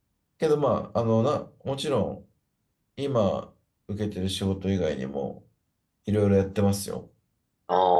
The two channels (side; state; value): both; identical; correlation 1.00